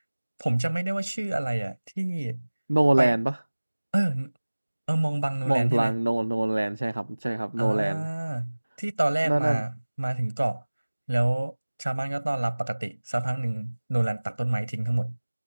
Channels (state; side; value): inverted; both; correlation -1.00